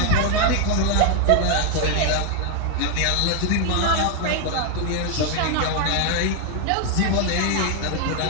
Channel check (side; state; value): both; different; correlation 0.00